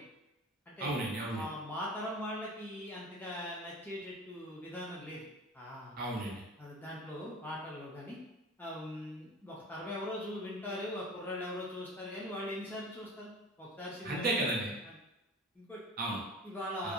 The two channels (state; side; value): normal; both; correlation 0.38